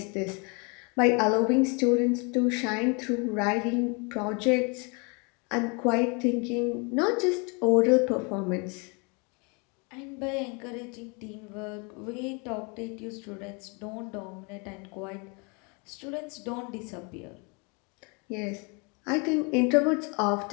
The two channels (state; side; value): quieter; right; 32.2 dB